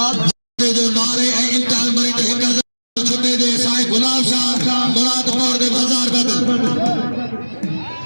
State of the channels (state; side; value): inverted; both; correlation -1.00